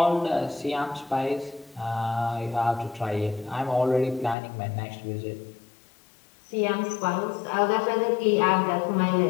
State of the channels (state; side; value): drops out; right; at 4.4 s